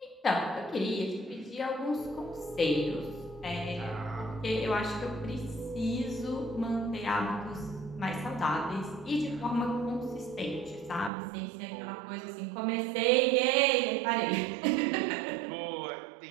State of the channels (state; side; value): drops out; left; at 11.1 s